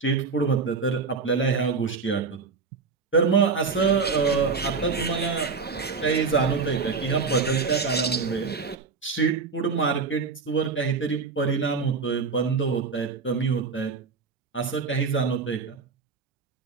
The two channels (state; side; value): quieter; left; 4.8 dB